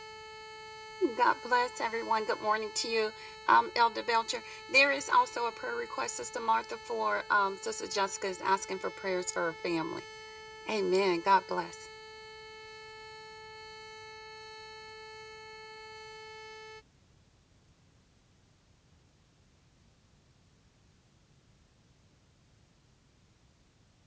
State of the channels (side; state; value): both; identical; correlation 1.00